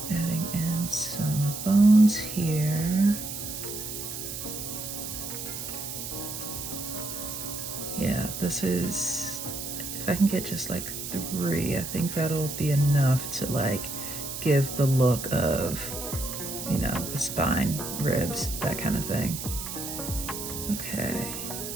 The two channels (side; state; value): right; noise; hiss, 7 dB below the sound